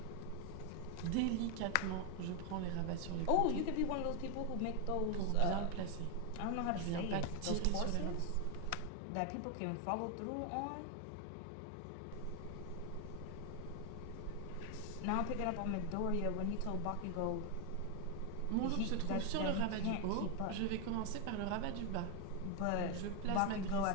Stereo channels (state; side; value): different; both; correlation 0.01